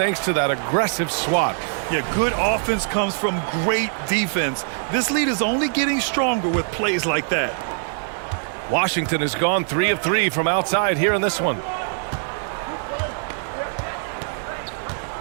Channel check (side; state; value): left; silent; 64 dB below the other